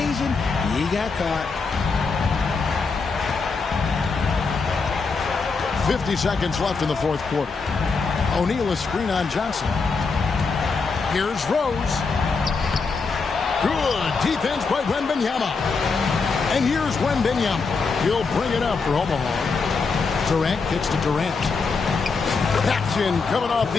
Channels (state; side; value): quieter; right; 4.6 dB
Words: he got caught. 50 seconds left in the fourth quarter. O'Neal a screen on Johnson. Here's Rose. Good defense by Wembanyama. And here's Wembanyama. He'll bring it up for Omaha. Durant kicks to Durant. That's in, coming off